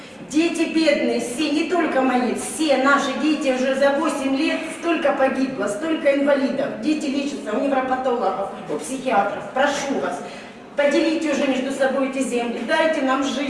Дети бедные, все, не только мои, все наши дети уже за 8 лет столько погибло, столько инвалидов. Дети лечатся у невропатологов, у психиатров. Прошу вас, поделите уже между собой эти земли, дайте нам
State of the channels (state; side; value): identical; both; correlation 1.00